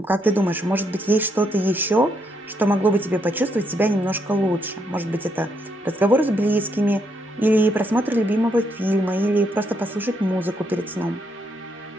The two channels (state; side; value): normal; both; correlation 0.76